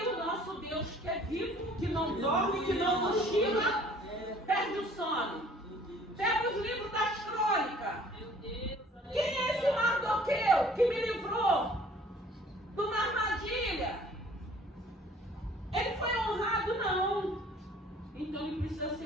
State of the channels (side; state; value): both; normal; correlation 0.54